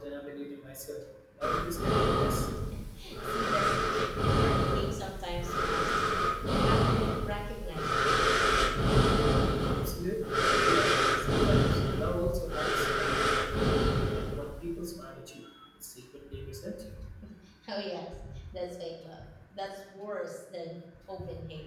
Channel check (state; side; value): identical; both; correlation 1.00